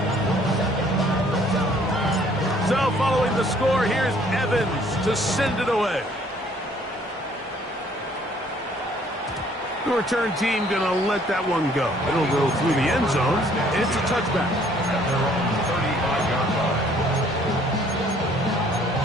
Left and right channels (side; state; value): both; normal; correlation 0.60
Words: So following the score, here's Evans to send it away. The return team going to let that one go. It'll go through the end zone, and it's a touchback. At their own 35-yard line.